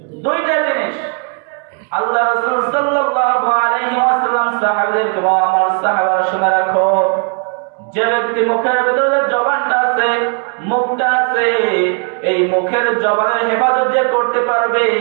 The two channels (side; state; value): left; quieter; 39.7 dB